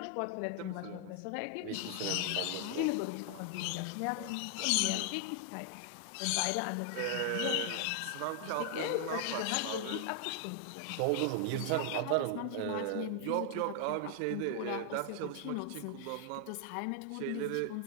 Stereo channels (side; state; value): both; different; correlation 0.00